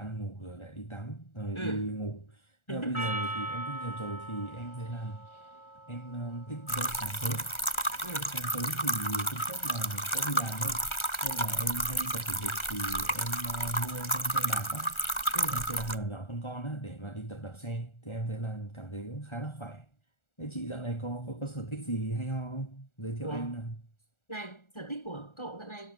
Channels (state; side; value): late; right; 1.4 ms